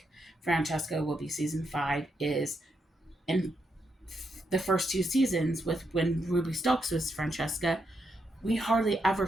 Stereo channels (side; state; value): both; normal; correlation 0.81